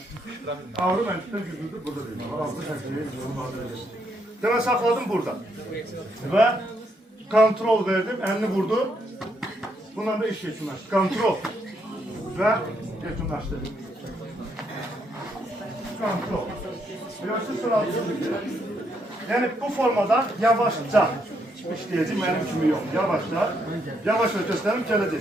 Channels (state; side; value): normal; both; correlation 0.76